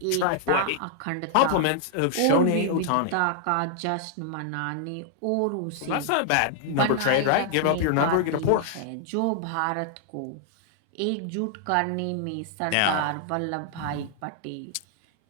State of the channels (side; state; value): both; different; correlation -0.01